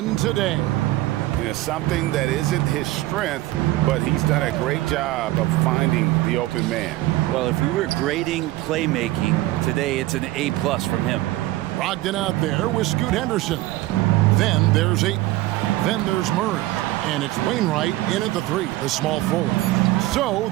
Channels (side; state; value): left; quieter; 17.2 dB